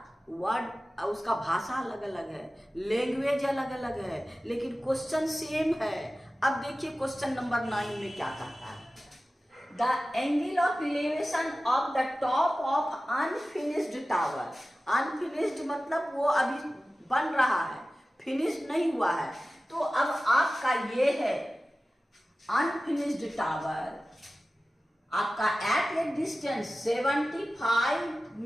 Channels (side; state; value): both; normal; correlation 0.96